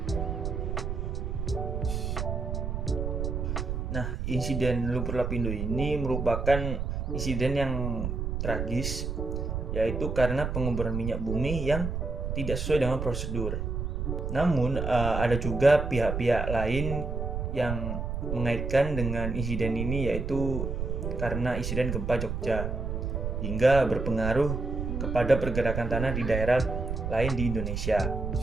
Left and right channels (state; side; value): noise; right; rumble, 3 dB below the sound